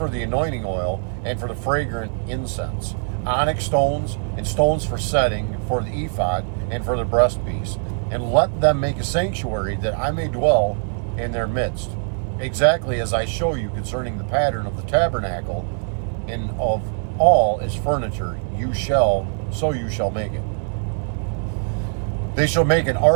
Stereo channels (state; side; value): silent; left; 64 dB below the other